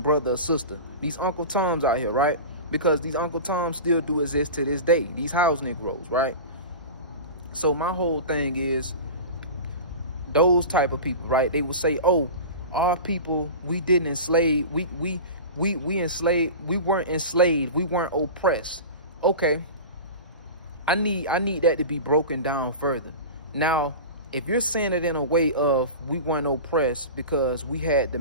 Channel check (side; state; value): both; inverted; correlation -0.31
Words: brother or sister. These Uncle Toms out here, right? Because these Uncle Toms still do exist to this day. These house Negroes, right? So my whole thing is, those type of people, right? They will say, "Oh, our people, we didn't enslave. We enslaved. We weren't enslaved. We weren't oppressed." Okay, I need that to be broken down further. Now, if you're saying it in a way of we weren't oppressed because we had the